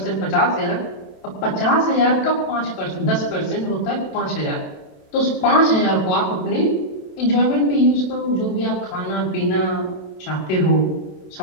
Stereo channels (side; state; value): right; late; 27 ms